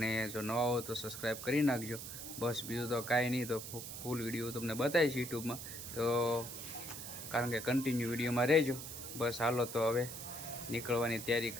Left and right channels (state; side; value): noise; right; hiss, 9 dB below the sound